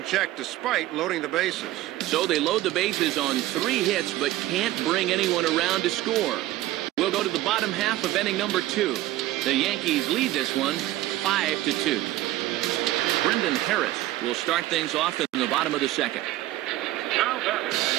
check despite loading the bases. So they load the bases on 3 hits, but can't bring anyone around to score. We'll go to the bottom half of inning number 2. The Yankees lead this one 5-2. Brendan Harris will start things off in the bottom of the second. Now batting,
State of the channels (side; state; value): left; quieter; 15.6 dB